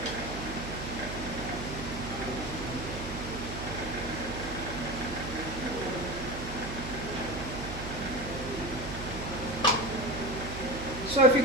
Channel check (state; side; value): noise; right; hum, 7 dB below the sound